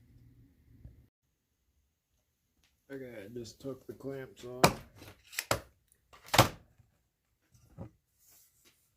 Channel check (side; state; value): both; identical; correlation 1.00